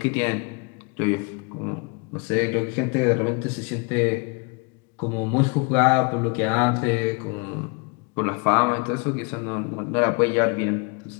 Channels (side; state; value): right; quieter; 32.5 dB